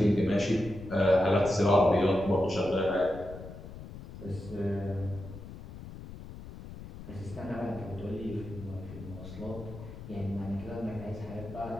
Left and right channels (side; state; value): left; noise; rumble, 13 dB below the sound